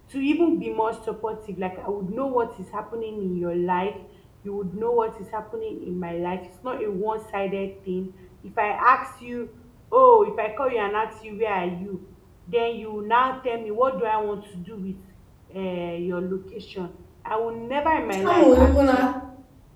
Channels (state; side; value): identical; both; correlation 1.00